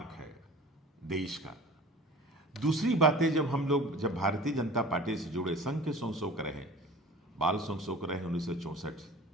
है देश का। दूसरी बातें, जब भारतीय जनता पार्टी से जुड़े, संघ के संशोक रहे, बाल संशोक रहे 1964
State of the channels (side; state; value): both; normal; correlation 0.41